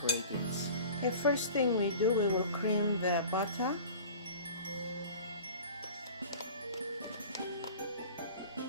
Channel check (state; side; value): inverted; both; correlation -0.41